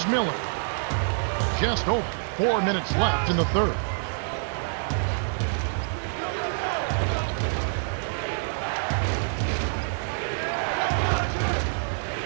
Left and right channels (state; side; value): silent; left; 61 dB below the other